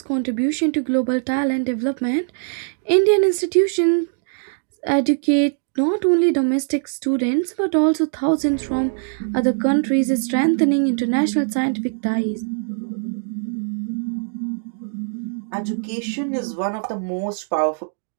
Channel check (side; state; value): left; silent; digital silence